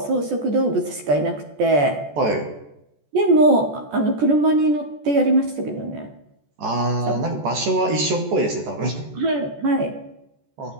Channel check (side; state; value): left; late; 14 ms